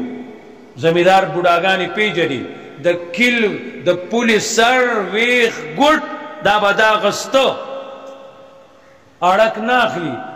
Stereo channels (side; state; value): both; identical; correlation 1.00